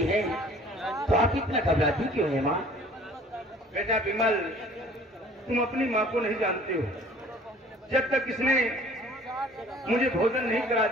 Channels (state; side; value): normal; both; correlation 0.51